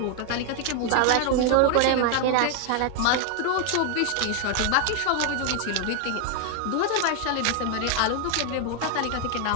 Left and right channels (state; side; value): different; both; correlation 0.00